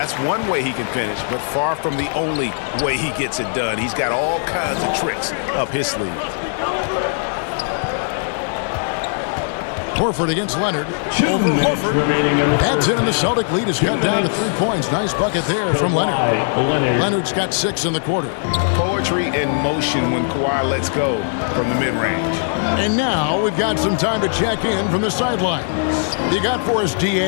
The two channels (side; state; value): right; silent; 61 dB below the other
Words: one way he can finish, but far from the only way he gets it done. He's got all kinds of tricks up his sleeve. Horford against Leonard. Over Horford. That's in, and the Celtic lead is cut down to 3 points. Nice bucket there from Leonard. Leonard's got 6 in the quarter. Poetry in motion when Kawhi lets go from the mid-range. And now we've got some time to check in from the sidelines. You got for us,